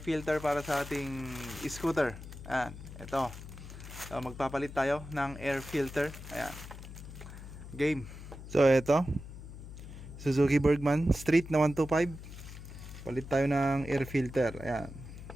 para sa ating scooter. Ayan, ito. So, magpapalit tayo ng air filter. Ayan, game. So, ito, Suzuki Bergman Street na 125. Palit tayo ng air filter. Ayan.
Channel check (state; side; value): noise; left; hum, 13 dB below the sound